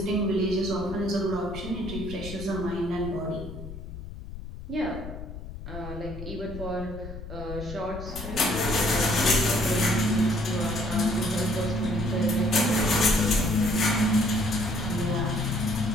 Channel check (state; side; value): noise; left; rumble, 11 dB below the sound